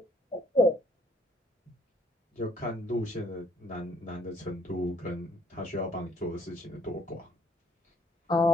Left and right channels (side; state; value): both; normal; correlation 0.64